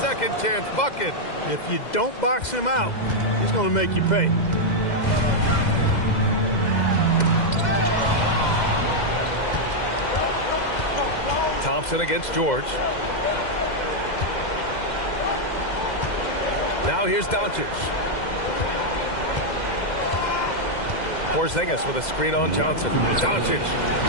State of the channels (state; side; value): late; right; 2.1 ms